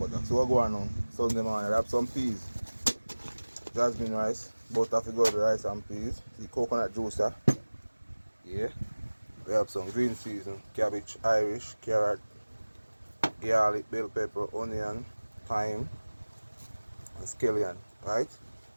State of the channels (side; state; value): both; inverted; correlation -1.00